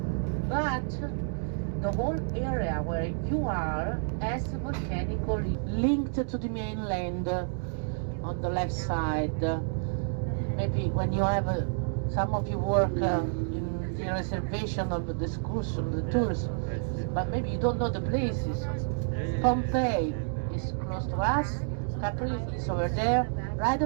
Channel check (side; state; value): left; silent; digital silence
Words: But the whole area where you are as volcanically linked to the mainland on the left side. Maybe when you have some of you work in the reservation of the excursion, the tours, but maybe you don't know the places. Pompeii is close to us, Capri is over there. Right